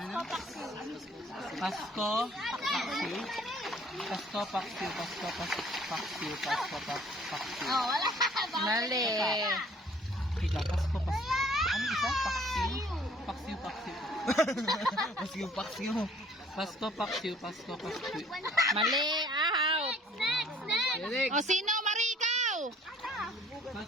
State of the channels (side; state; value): both; normal; correlation 0.56